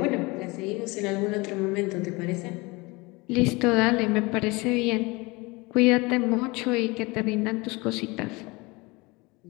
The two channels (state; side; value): quieter; right; 24.7 dB